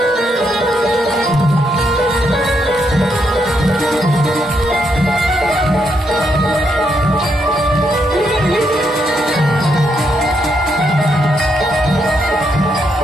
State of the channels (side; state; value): both; normal; correlation 0.77